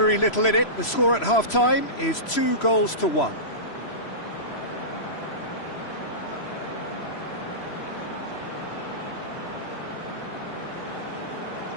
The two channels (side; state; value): right; late; 3.0 ms